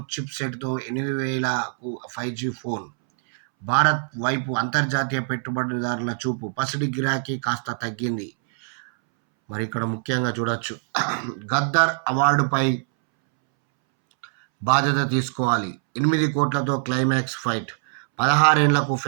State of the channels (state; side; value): silent; left; 63 dB below the other